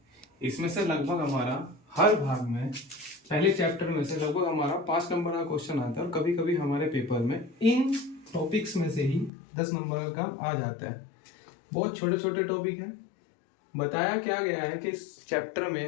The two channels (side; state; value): right; drops out; at 9.3 s